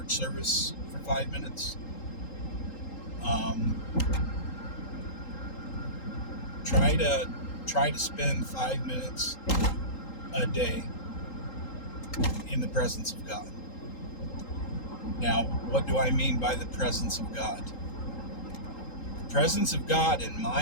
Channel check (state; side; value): late; right; 3.8 ms